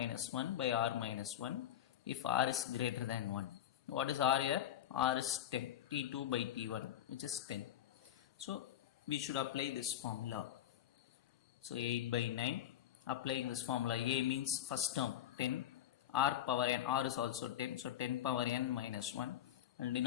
1 by R minus 1 if R is greater than 1. What is R here? R is 10. T2 by T1, which is 10. So we should apply this formula. So 8 by 9, applying this formula. A means first term 10, R power n, R is also 10, so 10 power n minus 1, and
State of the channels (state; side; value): quieter; right; 11.3 dB